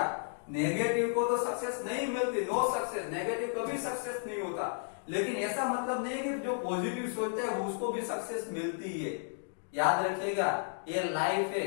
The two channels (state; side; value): silent; right; digital silence